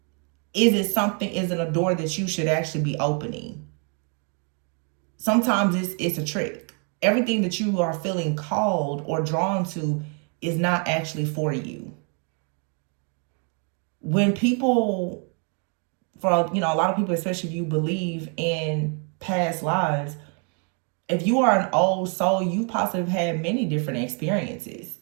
is it a door that you should actually be opening? Sometimes it's a trick. Everything that you are feeling called or drawn to is not actually for you. When people, for a lot of people, especially if you believe in past lives, if you are an old soul, you possibly had many different experiences.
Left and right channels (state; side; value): quieter; left; 38.7 dB